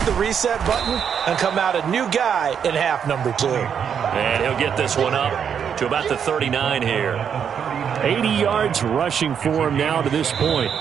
the reset button, and come out a new guy in half number 2. And he'll get this one up to about the 39 here. 80 yards rushing for him now to this point.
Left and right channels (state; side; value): quieter; left; 7.7 dB